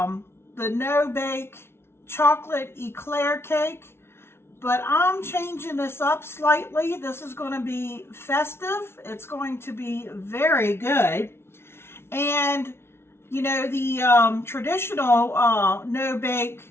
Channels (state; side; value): late; right; 0.12 ms